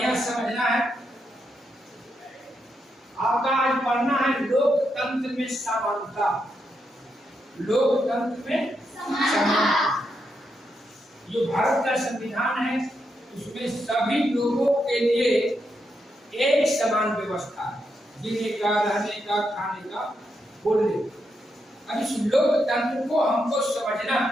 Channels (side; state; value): both; normal; correlation 0.82